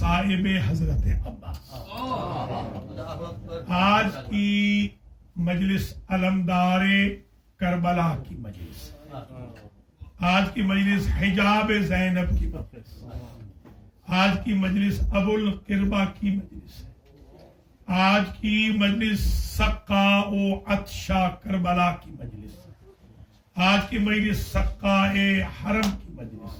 حضرت عباس۔ آج کی مجلس علمدار کربلا کی مجلس، آج کی مجلس حجاب زینب کی مجلس، آج کی مجلس ابو القربہ کی مجلس، آج کی مجلس سقا و عطشہ کربلا کی مجلس، آج کی مجلس سقا حرم کی مجلس،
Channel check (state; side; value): identical; both; correlation 1.00